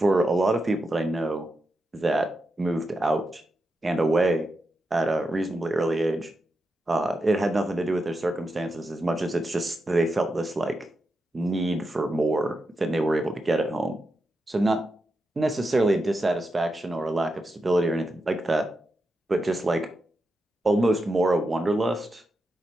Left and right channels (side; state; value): both; normal; correlation 0.87